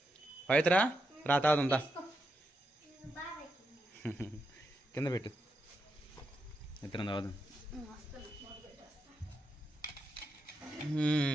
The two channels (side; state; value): both; normal; correlation 0.85